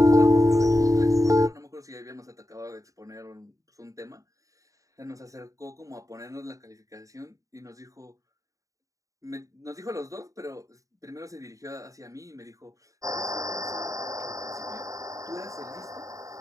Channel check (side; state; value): left; late; 0.16 ms